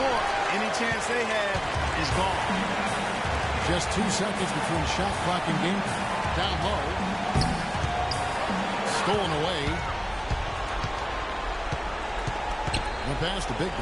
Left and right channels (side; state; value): both; identical; correlation 1.00